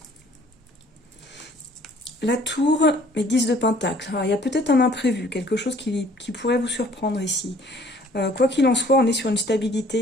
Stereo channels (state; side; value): normal; both; correlation 0.57